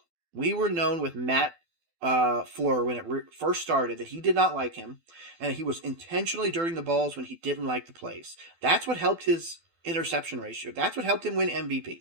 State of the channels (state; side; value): late; left; 12 ms